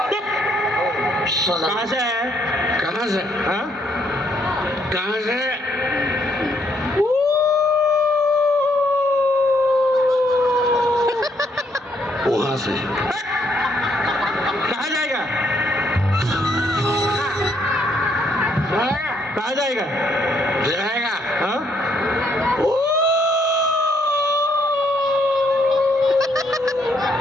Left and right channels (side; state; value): both; normal; correlation 0.71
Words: कहाँ से है कहाँ से हाँ कहाँ से वहां से कहाँ जाएगा कहाँ जाएगा जाएगा हाँ